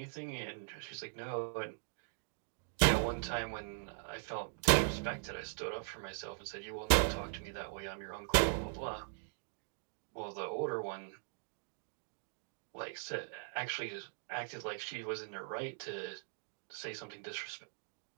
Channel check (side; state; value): left; silent; digital silence